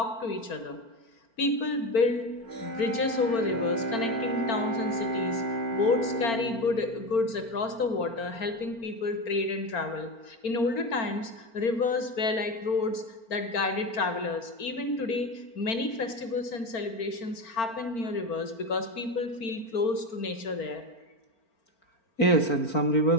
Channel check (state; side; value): late; right; 4.4 ms